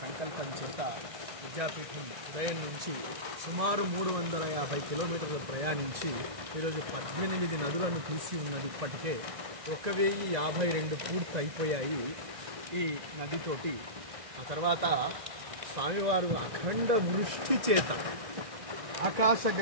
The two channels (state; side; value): late; left; 1.6 ms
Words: సంకల్పం చేత విద్యాపీఠం ఉదయం నుంచి సుమారు 350 కిలోమీటర్లు ప్రయాణించి ఈరోజు 18 నదులను తీసి ఉన్నది. ఇప్పటికే 1052 పూర్తి అయిపోయాయి ఈ నదితోటి. ఆ తర్వాత స్వామివారు అఖండ వృష్టి చేత